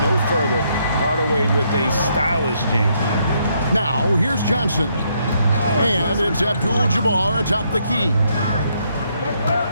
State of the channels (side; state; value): both; inverted; correlation -0.74